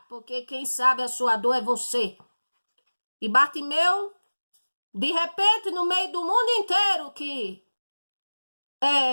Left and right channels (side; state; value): both; inverted; correlation -1.00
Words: porque quem sabe a sua dor é você. E Bartimeu, de repente, no meio do mundo inteiro que